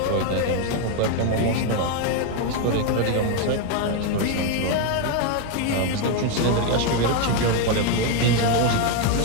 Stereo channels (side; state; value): both; different; correlation 0.01